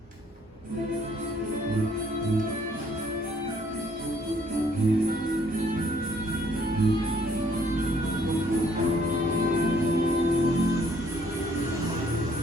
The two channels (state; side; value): normal; both; correlation 0.64